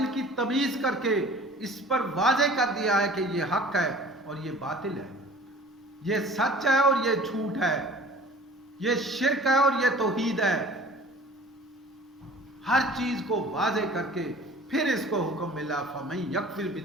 کی تمیز کر کے اس پر واضح کر دیا ہے کہ یہ حق ہے اور یہ باطل ہے، یہ سچ ہے اور یہ جھوٹ ہے، یہ شرک ہے اور یہ توحید ہے. ہر چیز کو واضح کر کے پھر اس کو حکم ملا فَمَن يَكْفُرْ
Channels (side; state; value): both; normal; correlation 0.46